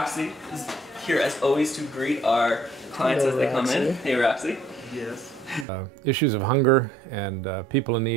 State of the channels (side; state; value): left; drops out; at 5.7 s